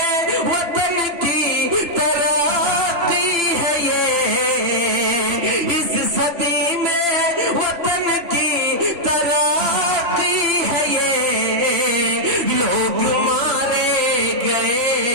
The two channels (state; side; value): late; left; 2.9 ms